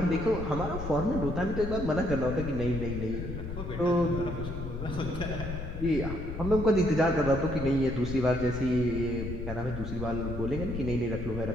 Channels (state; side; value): noise; left; rumble, 6 dB below the sound